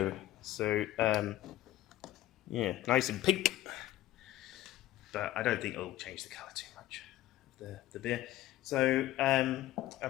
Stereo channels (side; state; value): right; quieter; 14.8 dB